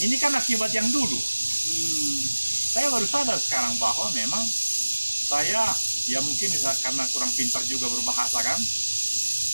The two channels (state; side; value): inverted; both; correlation -1.00